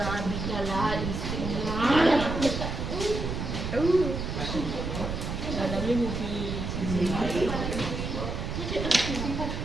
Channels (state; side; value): noise; right; rumble, 3 dB below the sound